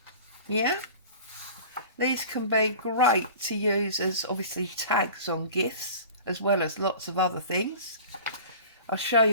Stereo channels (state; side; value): inverted; both; correlation -0.41